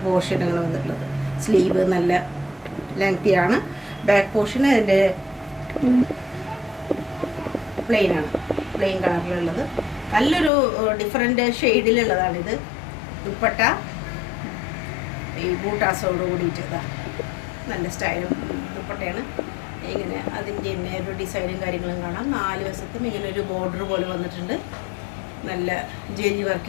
പോർഷനുകൾ വന്നിട്ടുള്ളത്. സ്ലീവ് നല്ല ലെങ്തിയാണ്. ബാക്ക് പോർഷൻ അതിൻ്റെ പ്ലെയിനാണ്, പ്ലെയിൻ കളറിലുള്ളത്. നല്ലൊരു ഡിഫറെൻ്റ് ഷെയ്ഡിലുള്ളതാണിത്. ദുപ്പട്ട ഈ ബൂട്ടാസോട് കൂടിയിട്ട് നല്ല സ്റ്റൈലും ദുപ്പട്ടയാണ്. ഇങ്ങനെ അതിൻ്റെ തന്നെ ഒരു ഡിസൈനും കാര്യങ്ങളും കാണാം. 4 വശത്തും ഇങ്ങനെ ഒരു ബോർഡർ പോലെ വന്നിട്ടുണ്ട്. നല്ല ജെരി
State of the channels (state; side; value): drops out; right; at 10.5 s